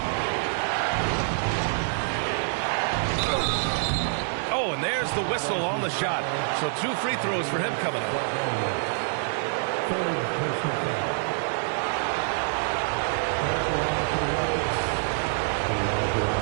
Oh, and there's the whistle on the shot. So 2 free throws for him coming up.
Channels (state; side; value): silent; left; 61 dB below the other